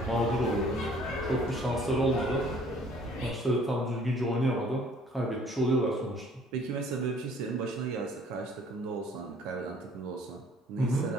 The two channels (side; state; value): both; normal; correlation 0.56